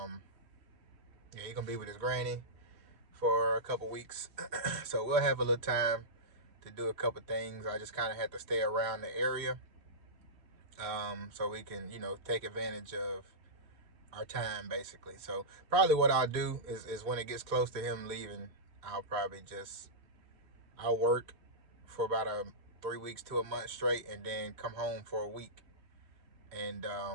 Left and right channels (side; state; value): left; late; 3.1 ms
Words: he's gonna be with his granny for a couple weeks. So we'll have a little time to do a couple things. I just kind of had to stay around the area so we can, you know, take advantage of our time basically. So probably what I'll do is when it gets close to him leaving, I'll probably I'll work for about 3 weeks to a month straight, and then come home for a week, and